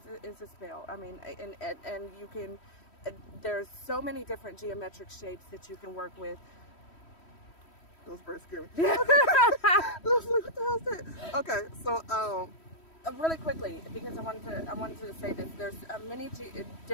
is a spell. I mean, and you can. There's so many different geometric shapes that you can work with. Those birds scare me. I was like, what the hell is that? Okay, so Really quickly, because I wanted to say this. There's many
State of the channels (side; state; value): right; late; 3.1 ms